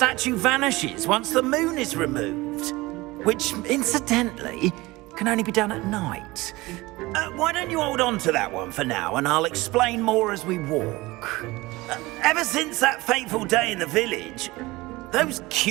vanishes once the moon is removed, which, incidentally, can only be done at night. Why don't you hold on to that one for now, and I'll explain more as we walk. Ever since that fateful day in the village, those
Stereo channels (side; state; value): left; quieter; 20.8 dB